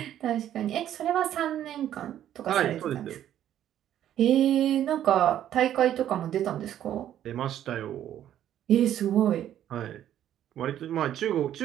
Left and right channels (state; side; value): quieter; left; 11.2 dB